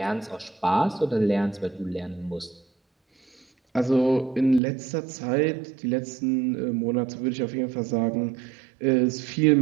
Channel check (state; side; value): drops out; left; at 4.6 s